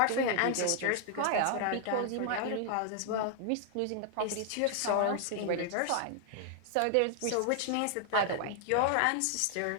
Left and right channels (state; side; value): different; both; correlation 0.00